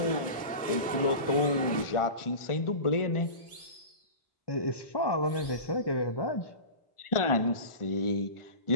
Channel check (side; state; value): right; late; 1.4 ms